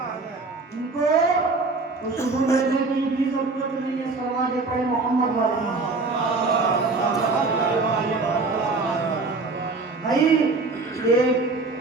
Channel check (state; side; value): quieter; left; 3.7 dB